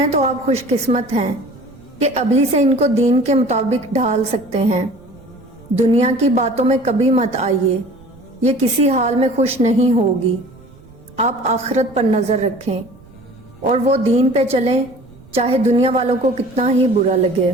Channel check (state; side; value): noise; right; rumble, 24 dB below the sound